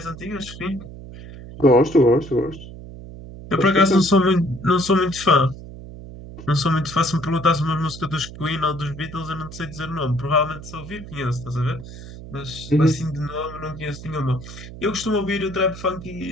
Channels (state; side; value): noise; right; hum, 14 dB below the sound